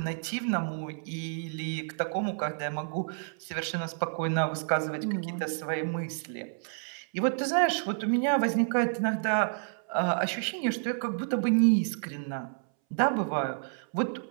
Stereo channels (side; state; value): left; silent; 58 dB below the other